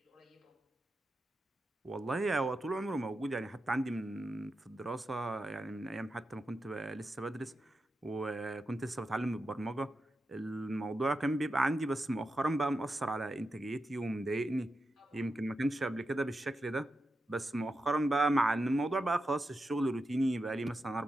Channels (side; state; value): both; normal; correlation 0.88